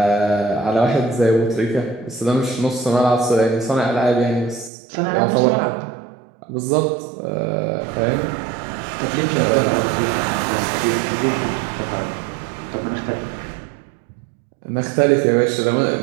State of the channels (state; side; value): drops out; left; at 4.7 s